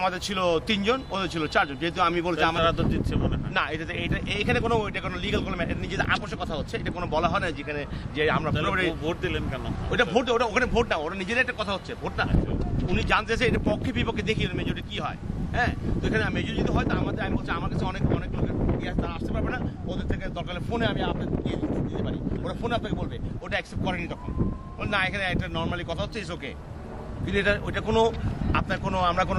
ছিল 3 জন, ওদের ছিল 4 জন। যেহেতু আমি বলছি তারা আমাদের তো জিতছে মনে হয়। না, এটা এখানে কোনো এটা কোনো লিগ্যাল কোনো নিজেদের আপোষের কথা হচ্ছে, এটা কোনো বলা হয় না যেখানে যে আমরা তাহলে পুরোপুরি ভোট দিলেন কেন? ওটা ভোট, ওটা ওখানে ভোট না, ওরা নিজেদের একটা কথা হচ্ছে ভোট না। উনি জানতে চাইছে এটা পক্ষে বিপক্ষে দেখি মেজরিটি কি হয়। হ্যাঁ, তো এখানে মেজরিটি যদি হয় তো আমাদের, আমি বলছি আমার কাছে অনেক লোকের ইয়ে তারা আসতে পারবে না, ওদের থেকে দরকার হলে ফোনে আমি আপনাকে দিতে পারি, ওরা ফোনে আপনাকে বলবে, ওটা অ্যাকসেপ্ট করেনি তখন না, এখানে একটা নর্মালি কথা হচ্ছে ইস ওকে। কিন্তু এটা ওইটা কোনো আপনার কোনো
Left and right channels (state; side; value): identical; both; correlation 1.00